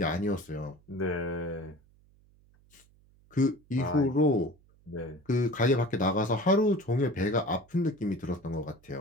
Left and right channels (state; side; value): noise; right; hum, 30 dB below the sound